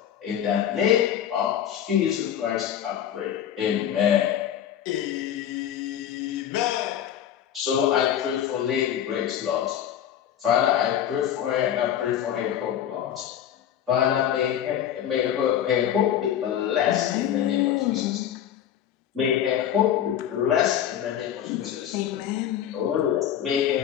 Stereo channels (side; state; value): right; quieter; 10.1 dB